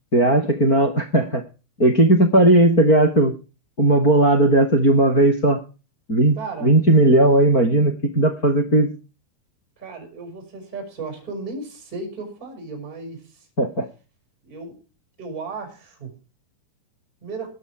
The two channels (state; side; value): late; right; 4.4 ms